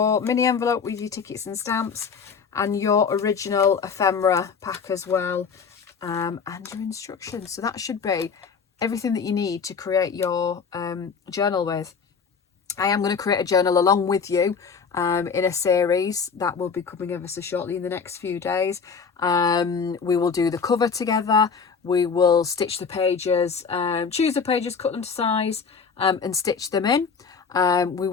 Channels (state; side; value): quieter; right; 5.8 dB